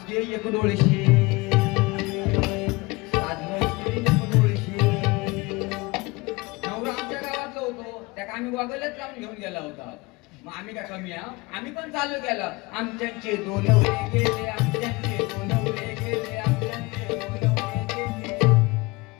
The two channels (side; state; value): right; quieter; 24.1 dB